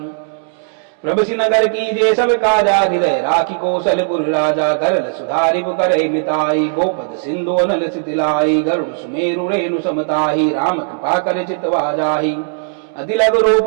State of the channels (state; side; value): silent; left; 69 dB below the other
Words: प्रभु नगर की जे सब काजा हृदय राखी कौशलपुर राजा करल सुधारि करहि मिताई गोपद सिंधु अनल सितिलाई गरुड़ सुमेरु रेणु समताही राम कृपा कर चितवा जाही अति लघु रूप